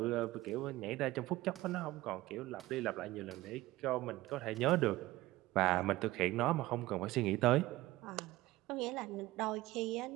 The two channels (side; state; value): left; quieter; 17.8 dB